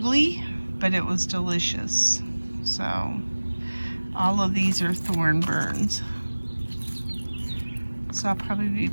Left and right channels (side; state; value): both; inverted; correlation -1.00